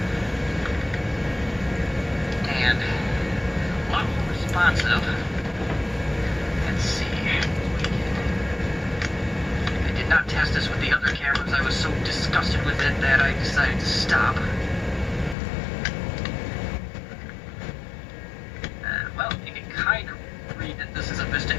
And a lot more responsive. Let's see. I did not test this with the other cameras. I was so disgusted with it that I decided to stop. Well, you can kind of read that this is a Vista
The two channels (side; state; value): right; drops out; at 15.4 s